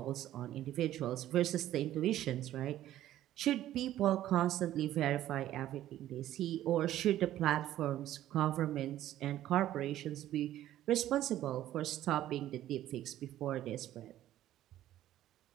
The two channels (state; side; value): quieter; left; 13.2 dB